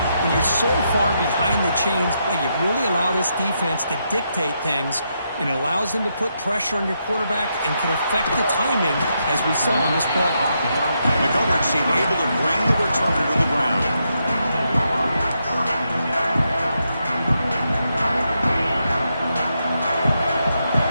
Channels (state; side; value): inverted; both; correlation -0.81